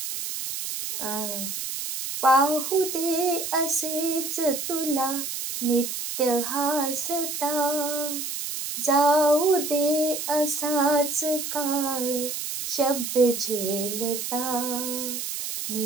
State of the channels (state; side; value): noise; right; hiss, 5 dB below the sound